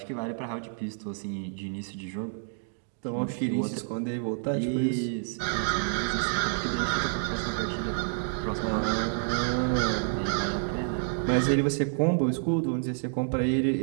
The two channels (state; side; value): silent; left; digital silence